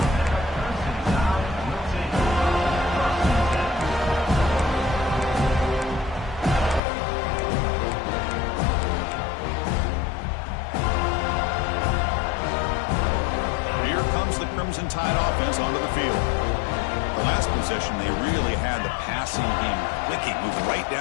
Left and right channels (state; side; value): drops out; right; at 6.8 s